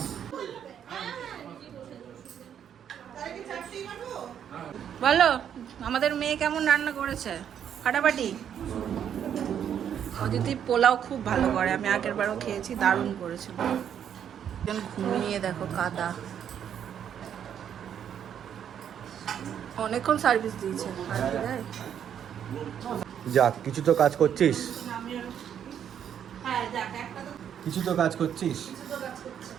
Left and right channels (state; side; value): quieter; left; 9.0 dB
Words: তাই কি চারটি মারবো? বলো আমাদের মেয়ে কেমন রান্না করেছে? ফাটাফাটি। অদিতি পোলাও খুব ভালো করে, আমি আগের বারও খেয়েছি, দারুণ করেছিল। একজন ঘুমিয়ে দেখো, কাদা। অনেকক্ষণ সার্ভিস দিয়েছে। আর কি দেয়? যাক, কিছু তো কাজ করছিস, হ্যাঁ যাক, একটা তো কিছু তো কাজ করছিস।